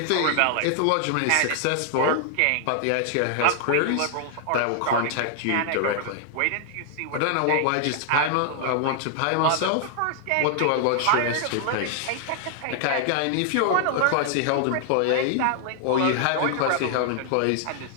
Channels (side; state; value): both; different; correlation 0.00